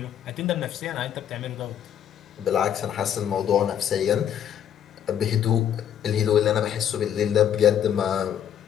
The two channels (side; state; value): right; quieter; 9.6 dB